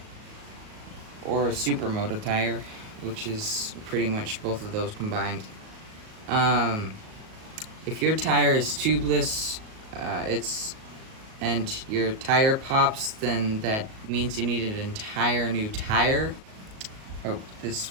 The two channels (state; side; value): late; left; 37 ms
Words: or a supermoto tire, which is pretty much both of those combined. If your tire is tubeless, and your tire pops, then that means you need an entire new tire. Hope this